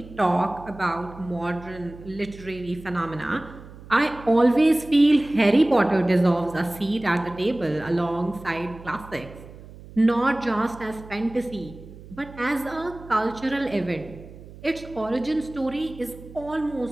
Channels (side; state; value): right; noise; hum, 18 dB below the sound